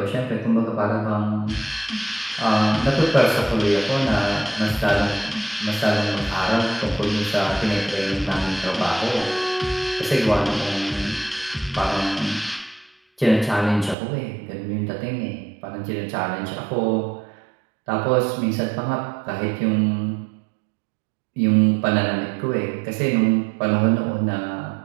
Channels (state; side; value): drops out; left; at 14.0 s